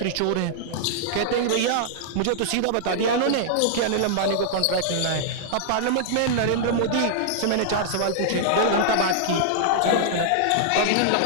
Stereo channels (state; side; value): different; both; correlation -0.01